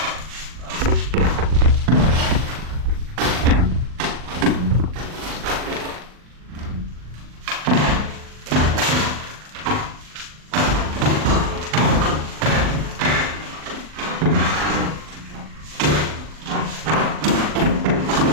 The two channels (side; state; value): left; late; 40 ms